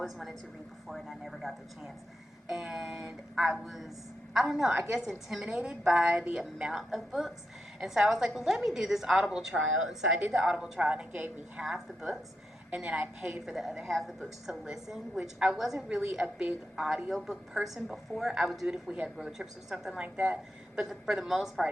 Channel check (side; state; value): both; normal; correlation 0.86